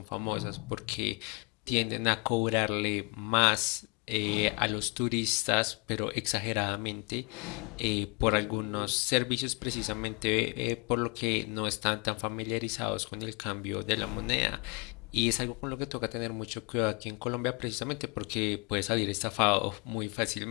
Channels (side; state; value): right; quieter; 32.2 dB